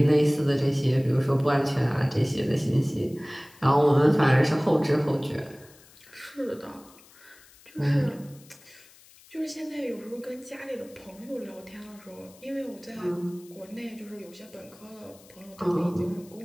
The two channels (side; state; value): left; noise; hiss, 25 dB below the sound